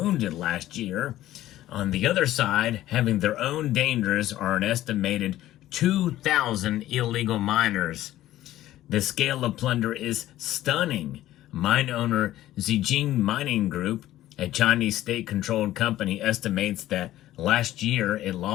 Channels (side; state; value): right; quieter; 14.4 dB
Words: last year. On the other side, having their own dangers are an estimated 2,000 illegal miners. The scale of plunder is stunning. Mine owner Zijin Mining Group, a Chinese state-controlled company, estimates that last year it